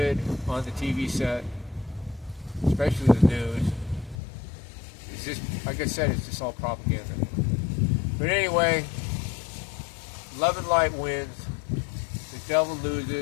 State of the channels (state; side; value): drops out; right; at 4.2 s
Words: on the TV set, especially the news. It's just, like I said, it's just all propaganda. But anyway, love and light wins. The devil